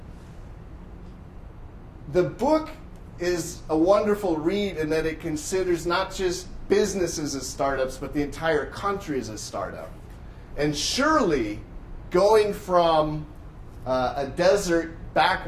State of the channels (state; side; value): identical; both; correlation 1.00